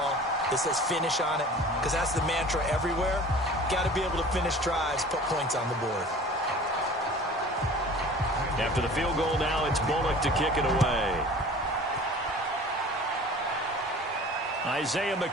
that says finish on it? Because that's the mantra everywhere. Got to be able to finish drives, put points on the board. After the field goal now, it's Bullock to kick it away. Isaiah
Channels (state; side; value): normal; both; correlation 0.43